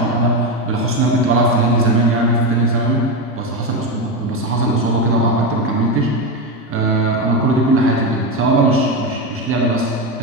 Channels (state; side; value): normal; both; correlation 0.13